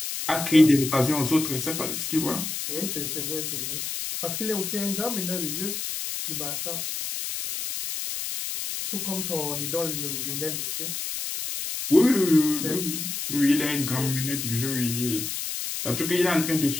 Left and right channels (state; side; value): noise; left; hiss, 4 dB below the sound